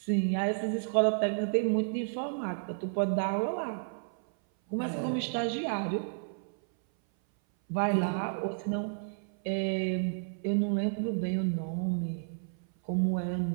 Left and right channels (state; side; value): silent; left; 57 dB below the other